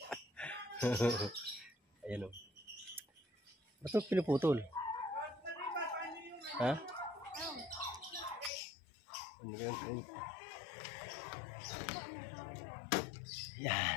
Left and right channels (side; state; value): right; drops out; at 8.5 s